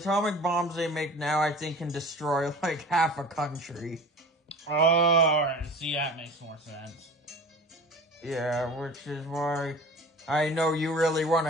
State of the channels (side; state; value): both; normal; correlation 0.39